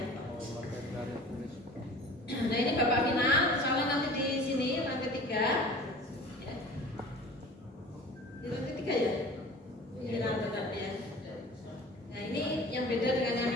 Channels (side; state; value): both; normal; correlation 0.42